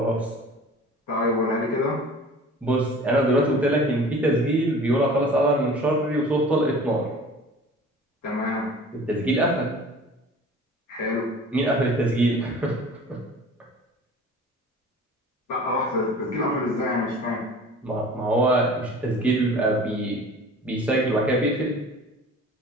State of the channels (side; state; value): both; normal; correlation 0.44